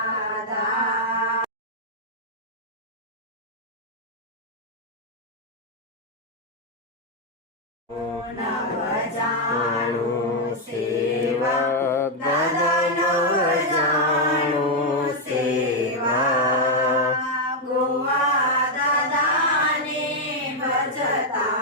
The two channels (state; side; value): normal; both; correlation 0.00